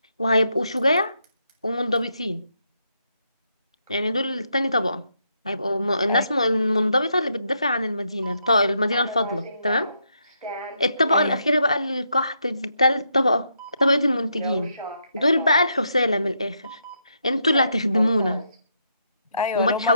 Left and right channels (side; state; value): both; inverted; correlation -0.78